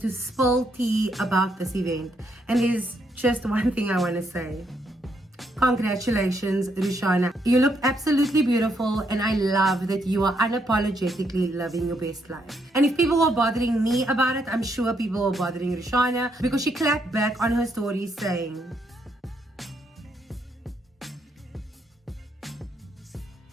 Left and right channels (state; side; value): normal; both; correlation 0.75